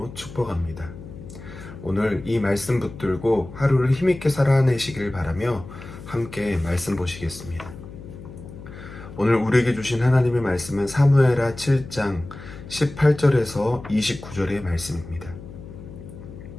축복합니다. 오늘 이 말씀 붙들고 하루를 힘있게 살아내시길 바라며 함께 말씀 보시겠습니다. 오늘 우리에게 주신 하나님의 말씀은 사무엘하 7장 18절에서 29절의 말씀입니다.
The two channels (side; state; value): left; noise; hum, 14 dB below the sound